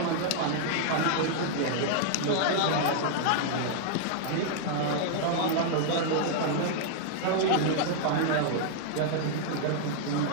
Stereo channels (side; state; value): both; different; correlation -0.01